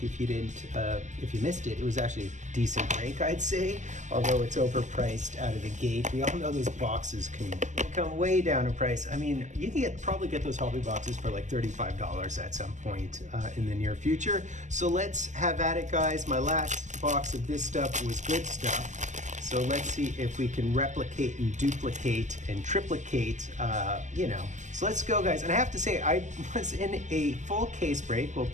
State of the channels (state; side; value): late; left; 0.34 ms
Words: if you didn't, if you missed it. It was actually a decent break, I'd say, although it's overpriced out of the gate. We all know those boxes can come way down in price. I mean, you can probably get those hobby boxes for like $35 at some point in the near future. So let's have at it, guys. My last box of this stuff was good stuff. So let's see if we can replicate and duplicate and triplicate, So let's go, guys. And I have to say, I was in a full case break, well,